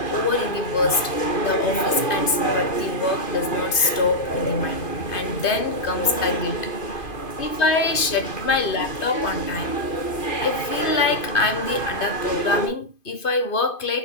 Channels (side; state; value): right; late; 2.5 ms